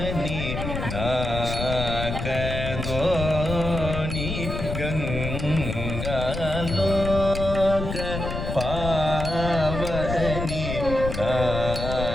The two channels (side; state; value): left; noise; rumble, 5 dB below the sound